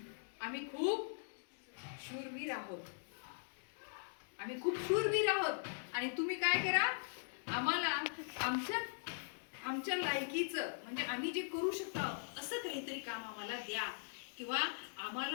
आम्ही खूप शूरवीर आहोत आणि तुम्ही काय करा, आम्हाला आमच्या लायकीचं म्हणजे आम्ही जे करू शकतो असं काहीतरी काम आम्हाला द्या किंवा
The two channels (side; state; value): right; silent; digital silence